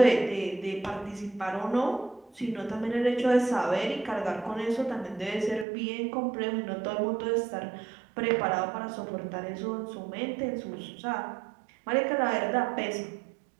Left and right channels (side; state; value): left; drops out; at 5.7 s